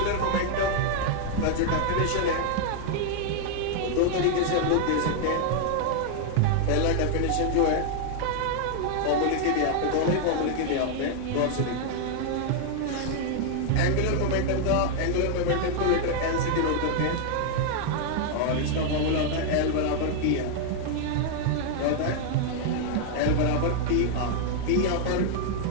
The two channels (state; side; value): different; both; correlation 0.00